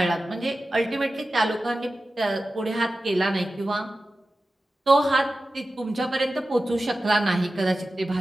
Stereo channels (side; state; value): both; normal; correlation 0.94